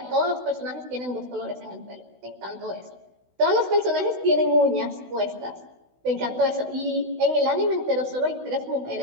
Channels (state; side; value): late; left; 16 ms